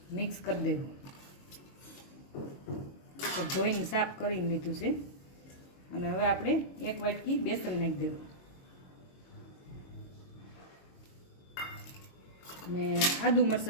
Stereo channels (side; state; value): right; late; 22 ms